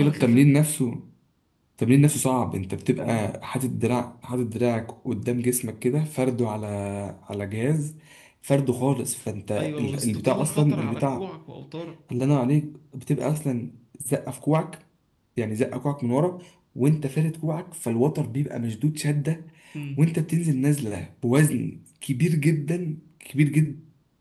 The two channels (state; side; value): identical; both; correlation 1.00